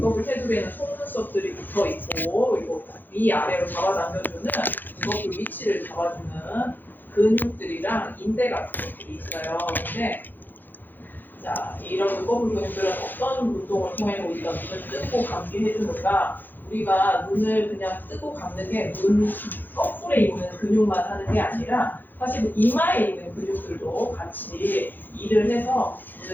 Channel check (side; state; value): right; late; 0.089 ms